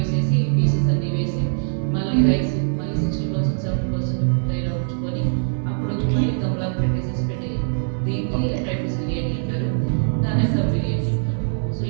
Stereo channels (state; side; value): silent; left; 64 dB below the other